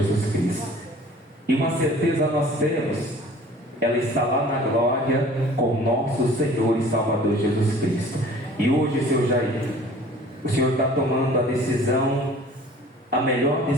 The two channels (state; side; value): normal; both; correlation 0.48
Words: Cristo. E uma certeza nós temos: ela está lá na glória com o nosso Senhor e Salvador Jesus Cristo. E hoje, seu Jair, o Senhor está tomando a decisão, a melhor